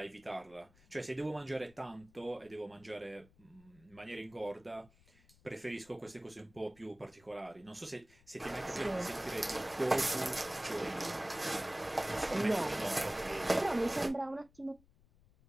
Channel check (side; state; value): left; noise; rumble, 28 dB below the sound